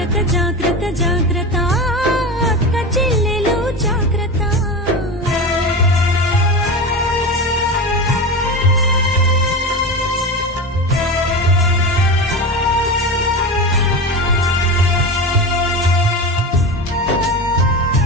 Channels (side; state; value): both; normal; correlation 0.24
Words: జాగ్రత్త జాగ్రత్త అక్క చెల్లెలు జాగ్రత్త